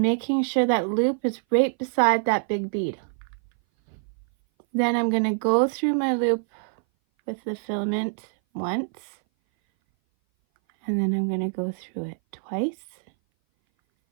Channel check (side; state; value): left; silent; 58 dB below the other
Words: making sure that loop is right beside that big bead. Then I'm going to go through my loop with the filament once, and then I'm going to go through it twice.